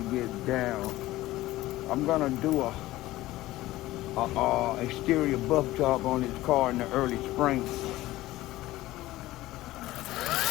get down. I'm gonna do a exterior buff job on his car in the early spring.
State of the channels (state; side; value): quieter; right; 16.9 dB